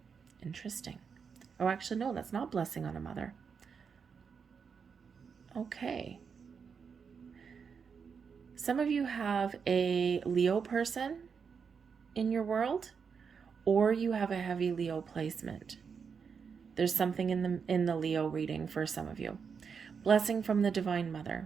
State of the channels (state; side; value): quieter; left; 6.2 dB